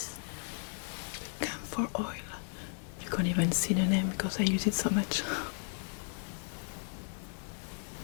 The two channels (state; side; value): silent; right; 55 dB below the other